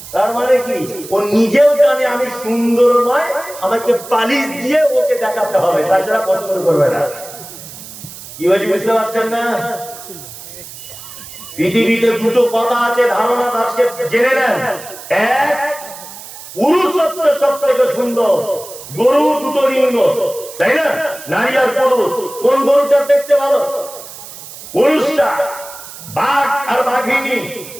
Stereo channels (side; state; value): right; noise; hiss, 15 dB below the sound